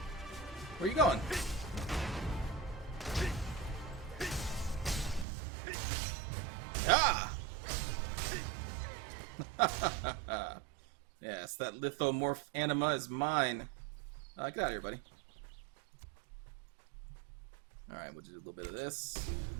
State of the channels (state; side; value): drops out; left; at 5.2 s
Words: Where are you going? Ah! Yes, that lithomorph anima is mine. Get out of here, buddy. Alright, we'll do a little bit of this.